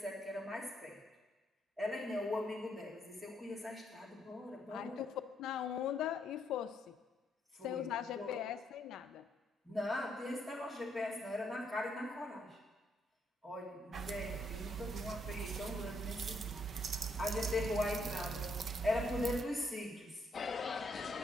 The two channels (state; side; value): normal; both; correlation 0.73